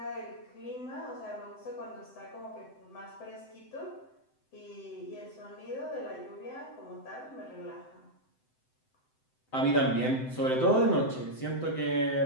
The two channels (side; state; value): right; late; 7.8 ms